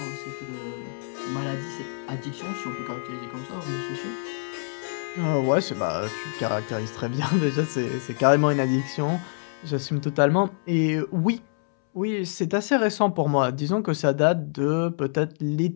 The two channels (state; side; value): silent; right; 61 dB below the other